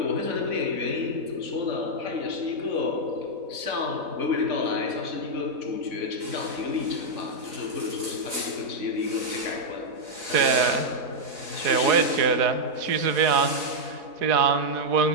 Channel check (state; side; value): late; left; 4.0 ms